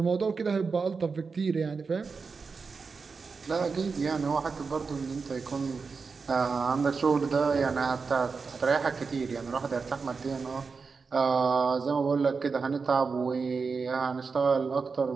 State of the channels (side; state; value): left; quieter; 4.9 dB